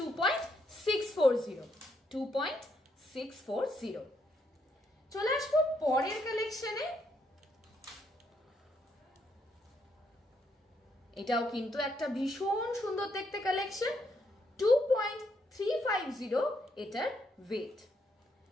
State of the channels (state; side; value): normal; both; correlation 0.75